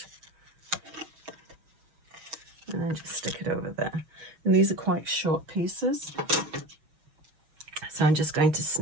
And then just stick it over there. And these are quite short pieces. So I'm just going to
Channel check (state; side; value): late; left; 6.4 ms